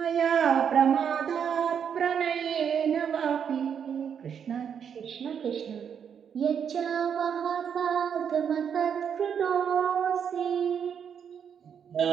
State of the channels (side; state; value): left; quieter; 7.7 dB